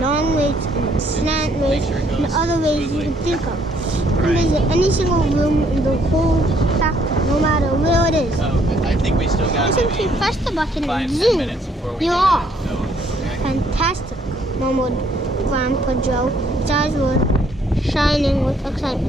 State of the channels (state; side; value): normal; both; correlation 0.67